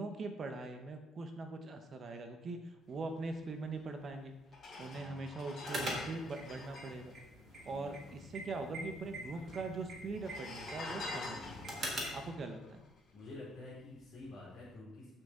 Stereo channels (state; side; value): normal; both; correlation 0.71